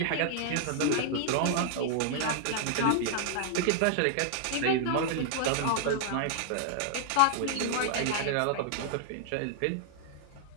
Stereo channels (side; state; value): both; different; correlation -0.01